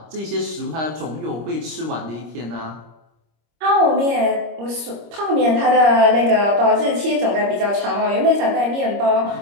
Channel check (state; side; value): late; left; 25 ms